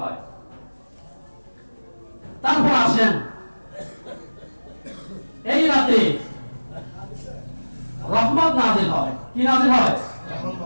হয়। তারপর আসেন এই রাতে রহমত নাযিল হয়। কি নাযিল হয়?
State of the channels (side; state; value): both; inverted; correlation -1.00